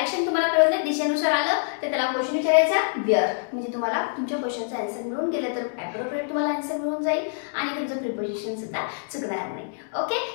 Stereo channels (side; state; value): right; silent; digital silence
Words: तुम्हाला कळलं नाही, दिशेनुसार आलं तर त्याला क्वेश्चन विचारायचा वेअर, म्हणजे तुम्हाला तुमच्या क्वेश्चनचा आन्सर मिळून गेलं तर ॲप्रोप्रिएट तुम्हाला आन्सर मिळून जाईल आणि तुमचं प्रिपोजिशन सुद्धा चुकणार नाही. ओके,